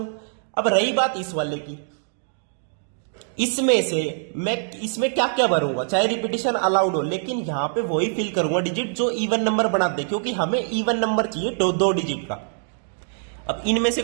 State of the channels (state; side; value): silent; left; digital silence